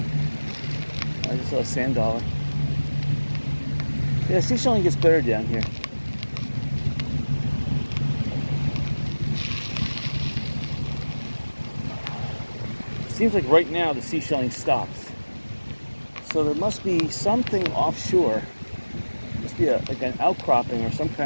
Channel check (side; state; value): both; inverted; correlation -1.00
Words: just saw a sand dollar. Yeah, seashelling gets better down here. It seems like right now the seashelling stops. So there must be something offshore. Must be like an outcropping or some